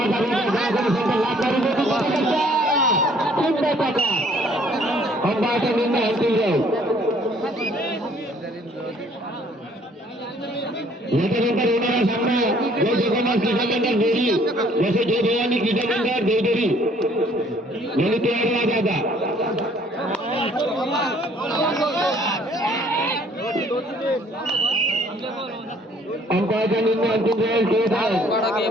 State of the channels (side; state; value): both; normal; correlation 0.60